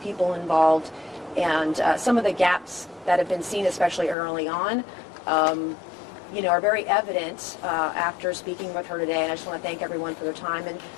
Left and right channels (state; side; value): drops out; right; at 4.2 s